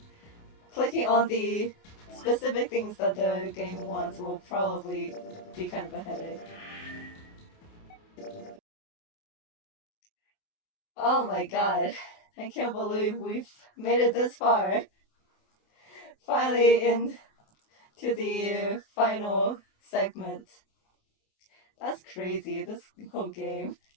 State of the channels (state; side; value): late; right; 28 ms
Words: clicking on the specific things that the game wants will probably be kind of a headache. Oh my god, I can't believe we've made it this far. Finally into the final segment. That's crazy, this whole game.